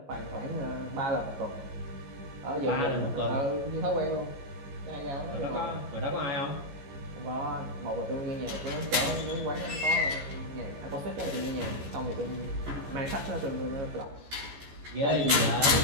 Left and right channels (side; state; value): left; late; 14 ms